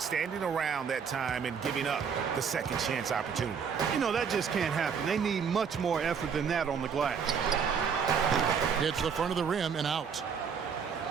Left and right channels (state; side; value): quieter; left; 6.6 dB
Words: standing around that time and giving up the second chance opportunity. You know, that just can't happen. They need much more effort than that on the glass. Hits the front of the rim and out.